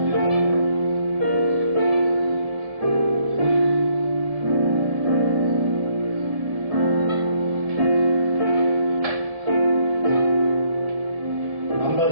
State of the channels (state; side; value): late; left; 1.8 ms